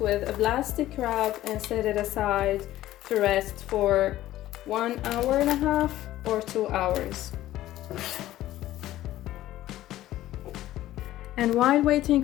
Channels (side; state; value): right; quieter; 14.6 dB